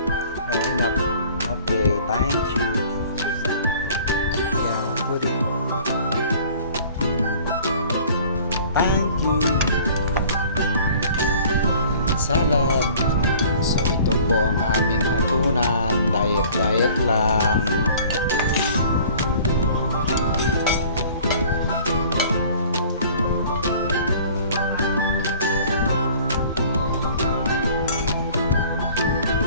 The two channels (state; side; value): inverted; both; correlation -0.49